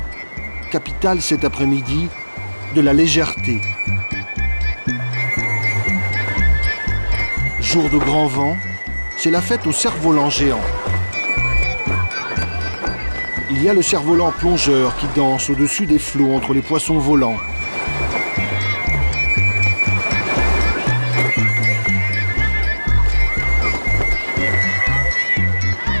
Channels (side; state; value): both; inverted; correlation -1.00